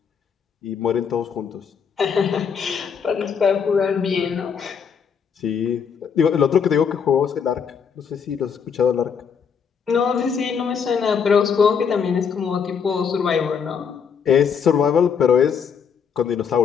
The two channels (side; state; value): right; quieter; 6.8 dB